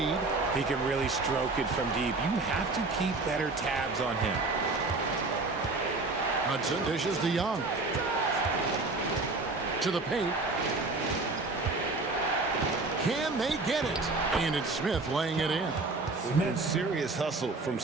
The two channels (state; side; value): quieter; left; 3.5 dB